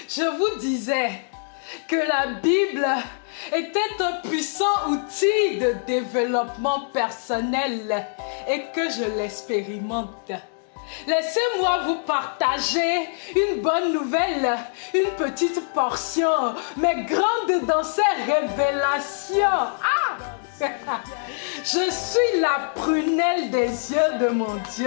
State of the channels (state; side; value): silent; right; digital silence